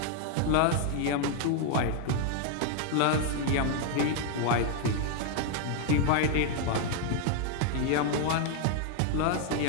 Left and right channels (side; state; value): both; different; correlation 0.00